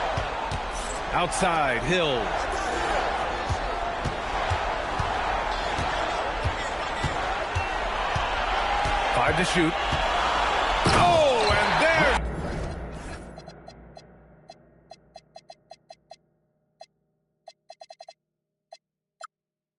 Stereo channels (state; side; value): identical; both; correlation 1.00